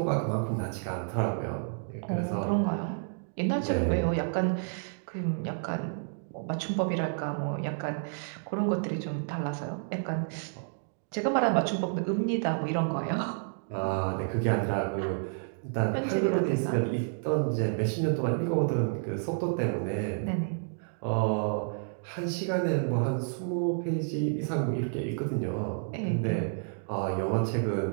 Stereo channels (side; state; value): left; silent; digital silence